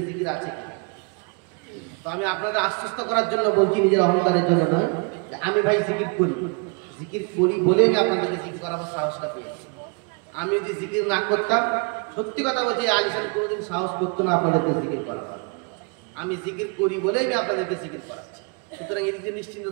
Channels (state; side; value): quieter; left; 34.2 dB